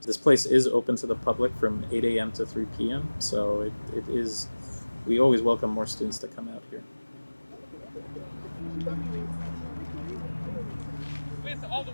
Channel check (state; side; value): inverted; both; correlation -1.00